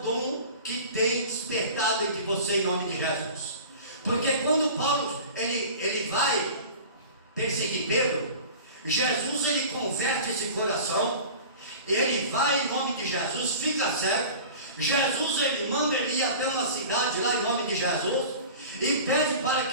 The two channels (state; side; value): inverted; both; correlation -0.38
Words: que tem despertado entre você em nome de Jesus? Porque quando Paulo ele vai perseguir Pedro, Jesus ele converte esse coração, ele vai em nome de Jesus, fica cego. Jesus ele manda ele ir até uma cidade lá em nome de Jesus e pede para